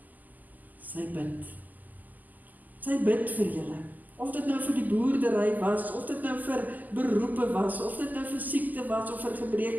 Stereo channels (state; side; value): late; left; 0.082 ms